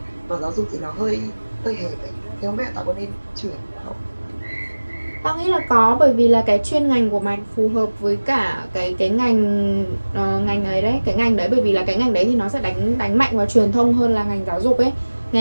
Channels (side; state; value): both; inverted; correlation -1.00